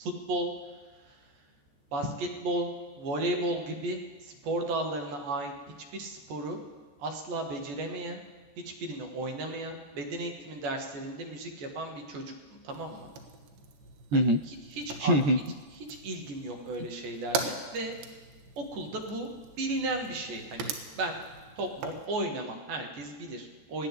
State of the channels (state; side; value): late; left; 14 ms